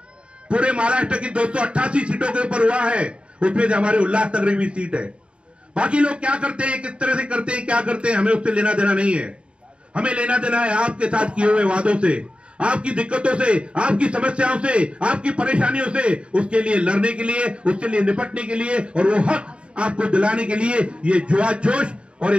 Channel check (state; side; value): late; left; 0.057 ms